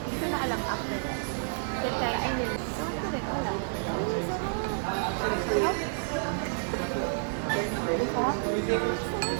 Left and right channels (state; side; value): silent; left; digital silence